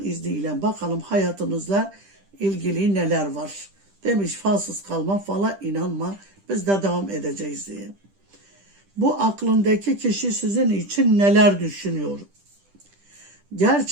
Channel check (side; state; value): left; late; 10 ms